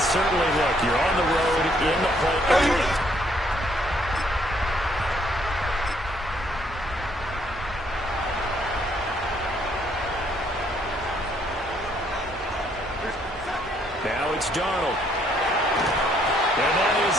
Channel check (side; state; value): both; normal; correlation 0.67